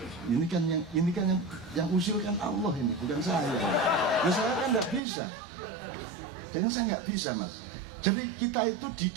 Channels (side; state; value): left; drops out; at 5.0 s